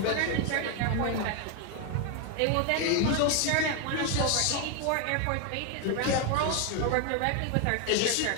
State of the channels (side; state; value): both; different; correlation 0.01